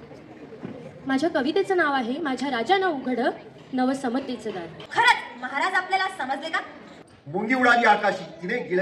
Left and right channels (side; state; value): both; identical; correlation 1.00